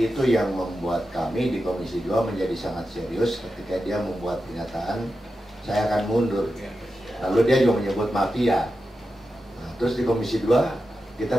itu yang membuat kami di Komisi 2 menjadi sangat serius ketika dia membuat pernyataan saya akan mundur. Lalu dia juga menyebut mafia. Nah, terus di Komisi 2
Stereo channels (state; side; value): normal; both; correlation 0.90